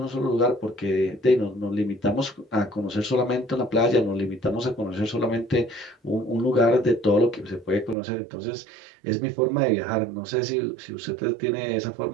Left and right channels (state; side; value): drops out; left; at 8.0 s